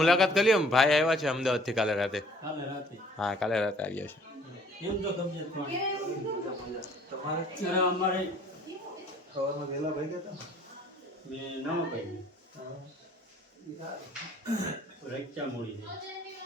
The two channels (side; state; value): both; normal; correlation 0.57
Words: કરી લ્યો. ભાઈ આવ્યા છે અમદાવાદથી કાલે રાતે. હા, કાલે રાતે આવ્યા છે.